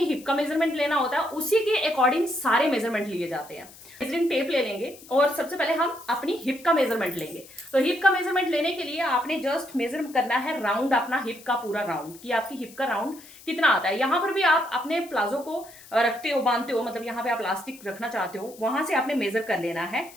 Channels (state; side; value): noise; left; hiss, 20 dB below the sound